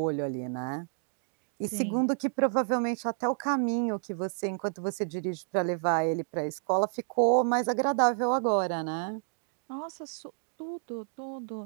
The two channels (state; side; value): silent; left; digital silence